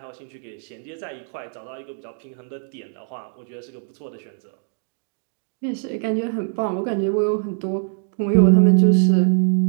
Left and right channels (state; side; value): silent; left; 64 dB below the other